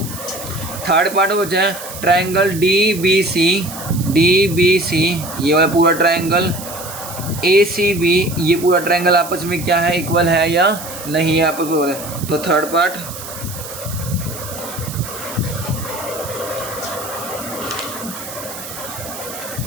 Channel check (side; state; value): right; noise; hiss, 11 dB below the sound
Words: Third part बचा है ट्रायंगल डी बी सी, ये वाला पूरा ट्रायंगल, ए सी बी, ये पूरा ट्रायंगल आपस में क्या है इक्वल है या नहीं है आपस में। तो थर्ड पार्ट